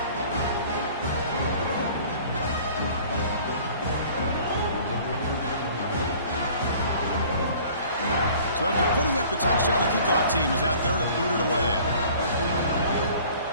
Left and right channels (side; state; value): both; inverted; correlation -0.50